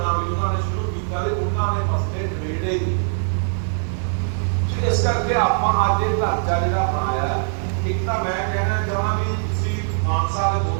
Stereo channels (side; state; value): left; silent; 60 dB below the other